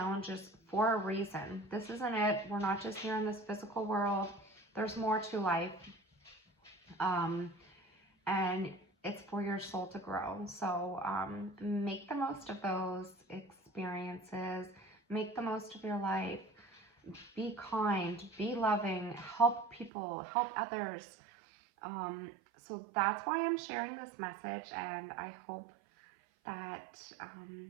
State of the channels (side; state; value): left; drops out; at 19.9 s